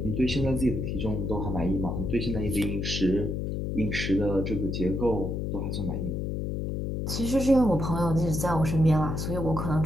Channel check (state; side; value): noise; left; hum, 2 dB below the sound